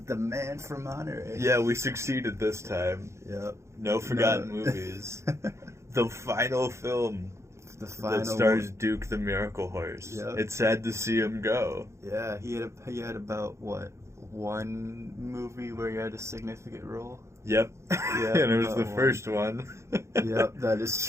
Man from Monterey. Yeah, we succeeded this time. Yep. No forgotten movies. The final film that stars Duke the Miracle Horse. Yep. It's sad to see him go. Yeah, he had about what, one movie where he had a significant role. Yep. Yeah, And it was the first one. Yep, that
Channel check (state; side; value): late; left; 0.14 ms